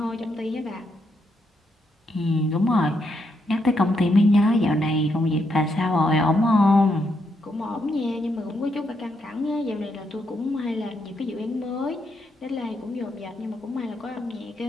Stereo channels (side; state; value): both; normal; correlation 0.79